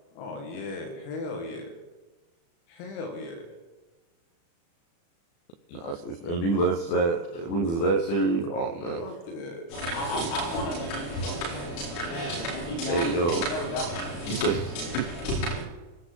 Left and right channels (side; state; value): right; late; 35 ms